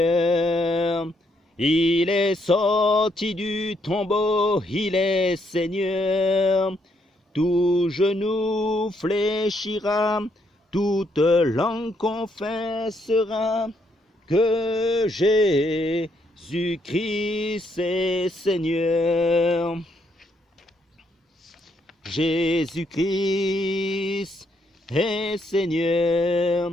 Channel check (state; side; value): normal; both; correlation 0.74